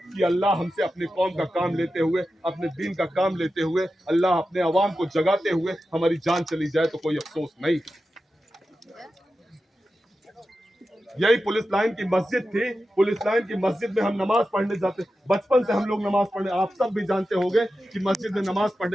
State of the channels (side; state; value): both; normal; correlation 0.92